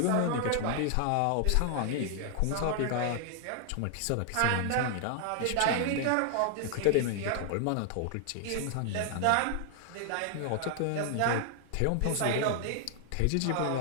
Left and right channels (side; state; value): both; different; correlation 0.00